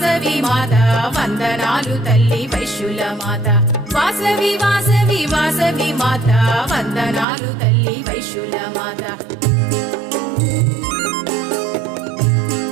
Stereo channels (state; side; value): drops out; left; at 7.2 s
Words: మాత వందనాలు తల్లి వైశ్యుల మాత వాసవి వాసవి వాసవి మాత వందనాలు తల్లి వైశ్యుల మాత